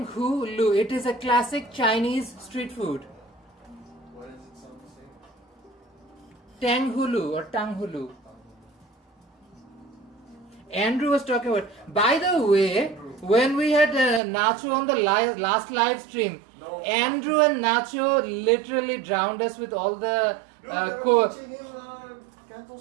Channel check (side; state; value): left; drops out; at 14.2 s